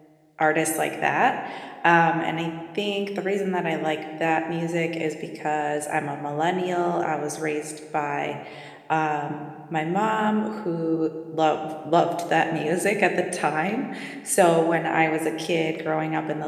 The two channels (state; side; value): identical; both; correlation 1.00